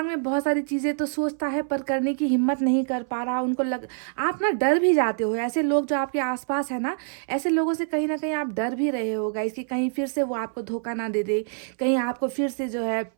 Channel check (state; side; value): silent; left; 61 dB below the other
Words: में बहुत सारी चीज़ें तो सोचता है पर करने की हिम्मत नहीं कर पा रहा। आप ना डर भी जाते हो। ऐसे लोग जो आपके आसपास है ना, ऐसे लोगों से कहीं ना कहीं आप डर भी रहे हो गाइस कि कहीं फिर से वो आपको धोखा ना दे दे, कहीं आपको फिर से जो है